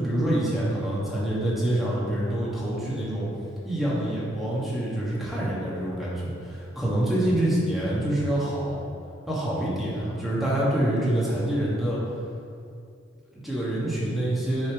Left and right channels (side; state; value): both; normal; correlation 0.77